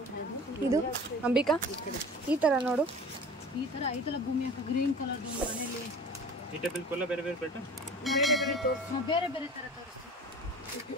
ಇದು ಅಂಬಿಕಾ, ಈ ಥರ ನೋಡು. ಈ ತರ ಐತಲ್ಲ ಭೂಮಿ ಹಾಕ, ಗ್ರೀನ್ ಕಲರ್ ಮನೆಯಲ್ಲಿ ಬೇರೆ ಬೇರೆ ಬೇರೆ ಬೇರೆ ಬೇರೆ ತರ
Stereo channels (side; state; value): both; normal; correlation 0.40